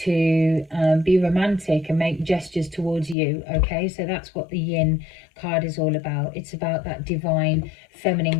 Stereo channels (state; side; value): drops out; right; at 3.2 s